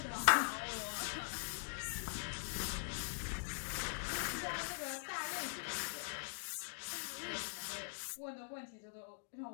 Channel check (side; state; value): right; silent; digital silence